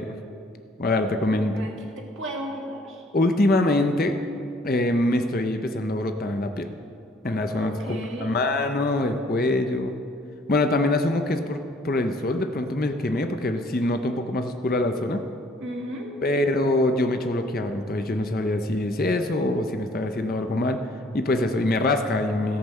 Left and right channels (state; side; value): normal; both; correlation 0.60